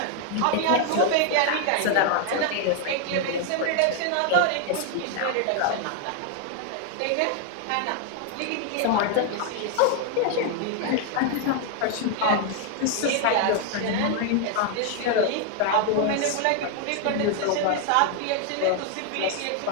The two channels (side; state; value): both; different; correlation 0.00